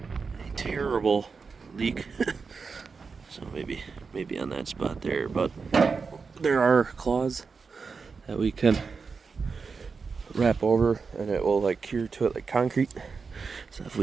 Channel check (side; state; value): left; quieter; 5.0 dB